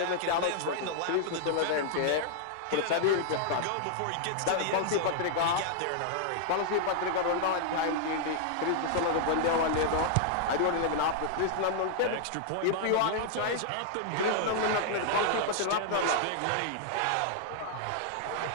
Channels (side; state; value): both; different; correlation -0.01